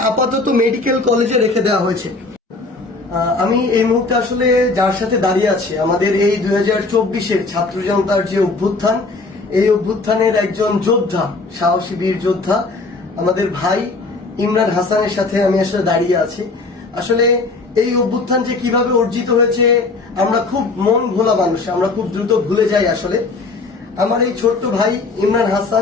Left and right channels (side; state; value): right; quieter; 3.6 dB